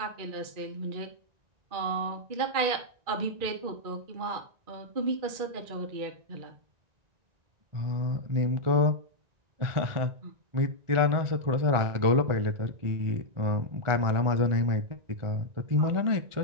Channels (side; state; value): left; late; 2.4 ms